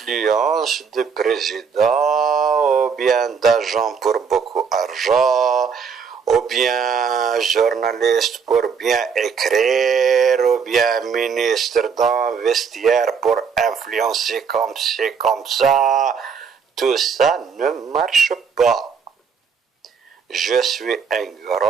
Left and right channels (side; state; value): left; quieter; 6.2 dB